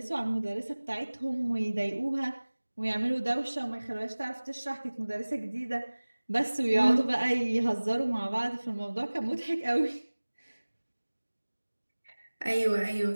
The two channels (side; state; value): both; inverted; correlation -1.00